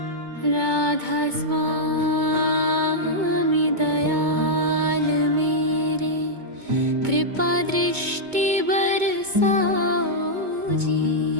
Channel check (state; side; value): late; left; 2.2 ms